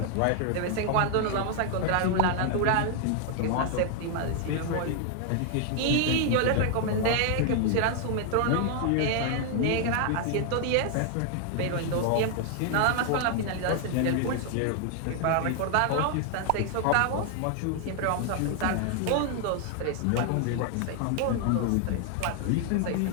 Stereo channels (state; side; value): different; both; correlation 0.00